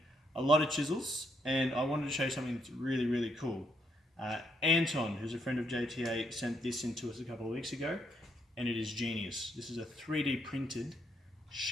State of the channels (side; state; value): both; normal; correlation 0.75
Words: a lot of chisels, and I wanted to show you something that's really cool. Anton, who's a friend of JTA, sent this in to us a couple of weeks ago, and it is genius. This is a 3D printed